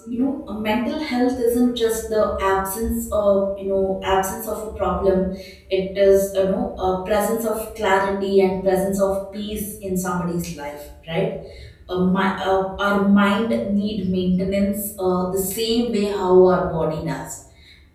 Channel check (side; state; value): both; identical; correlation 1.00